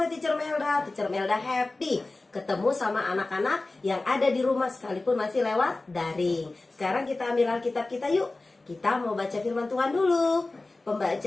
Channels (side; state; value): right; quieter; 3.2 dB